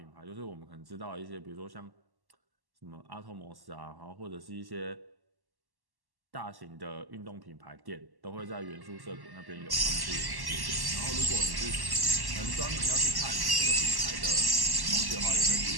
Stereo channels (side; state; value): left; late; 1.1 ms